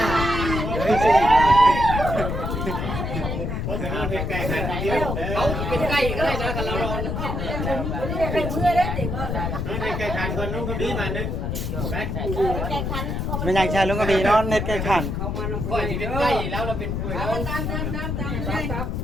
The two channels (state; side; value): noise; left; rumble, 2 dB below the sound